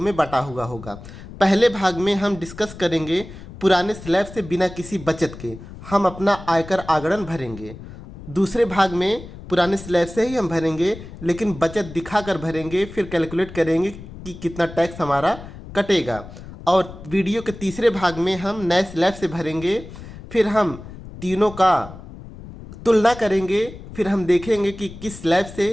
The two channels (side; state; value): left; noise; rumble, 15 dB below the sound